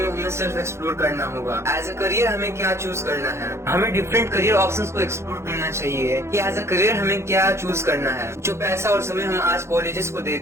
में हमें सेल्फ एक्सप्लोर करना होगा। एज अ करियर हमें क्या चूज करना है, हमें डिफरेंट करियर ऑप्शंस को एक्सप्लोर करना चाहिए कि एज अ करियर हमें क्या चूज करना है। जो पैसा और समय हम आज कॉलेजेस को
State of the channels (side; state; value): left; late; 0.13 ms